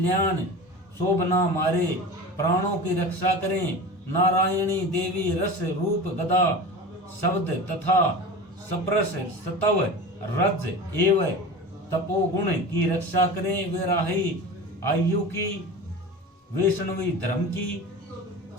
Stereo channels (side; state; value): both; normal; correlation 0.32